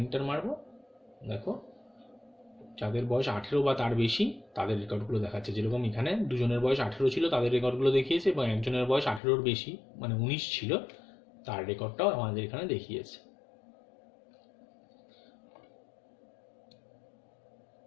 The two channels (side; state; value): right; drops out; at 9.2 s